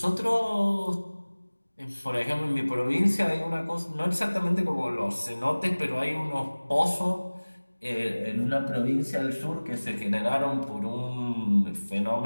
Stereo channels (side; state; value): both; inverted; correlation -1.00